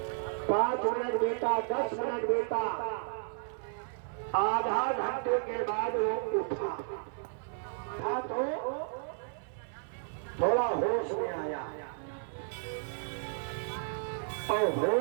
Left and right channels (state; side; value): silent; left; 56 dB below the other